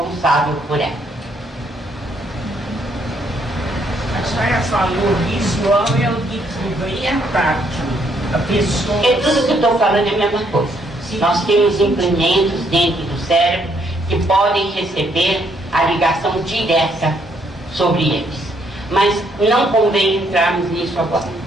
por ela. A senhora falou visual é o que ganha tátil. A pessoa... É tudo que eu estou falando é a mesma coisa. Nós temos implementos dentro do cérebro que podem receber a ligação direta sobre eles. Mas não convém entrarmos nisso agora.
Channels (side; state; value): both; normal; correlation 0.71